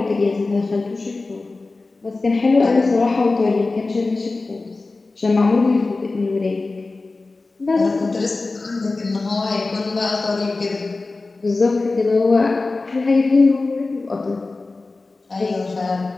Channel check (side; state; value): right; quieter; 3.5 dB